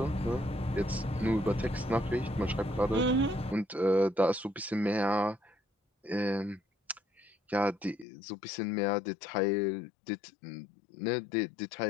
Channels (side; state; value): right; drops out; at 8.1 s